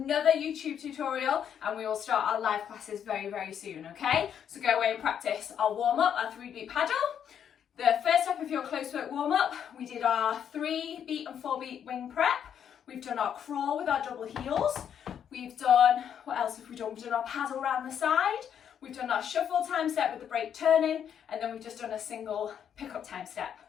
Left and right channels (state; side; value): quieter; right; 8.7 dB